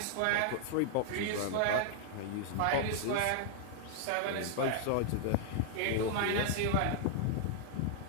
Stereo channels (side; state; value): both; different; correlation 0.00